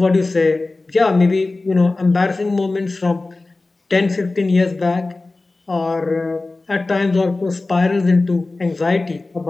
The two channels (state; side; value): quieter; right; 3.3 dB